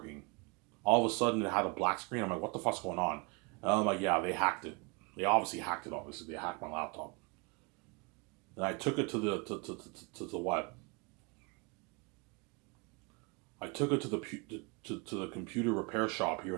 All of a sudden, it had a black screen. I'm like, what the fuck's going on? And I'm like, yeah, they hacked it. They obviously hacked it, obviously. They hacked my laptop. And I took it to the what? I took it to the computer repair shop here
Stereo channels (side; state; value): left; quieter; 30.2 dB